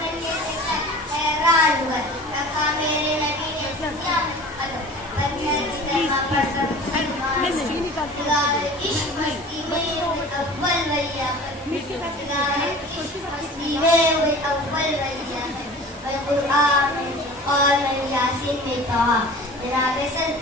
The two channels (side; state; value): both; normal; correlation 0.41